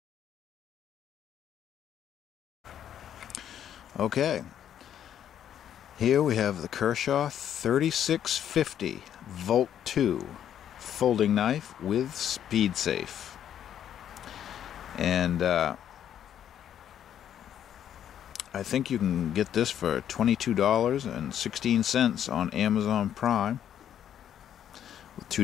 Okay, here we have the Kershaw 3650 Volt 2 folding knife with SpeedSafe. And I think you can get this for $22.16 on Amazon Prime with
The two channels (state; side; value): quieter; right; 10.0 dB